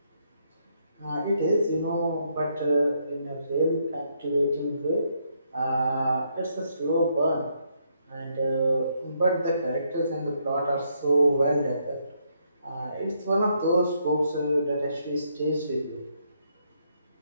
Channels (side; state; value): both; inverted; correlation -0.74